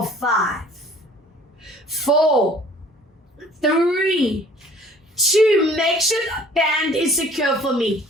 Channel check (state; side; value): normal; both; correlation 0.52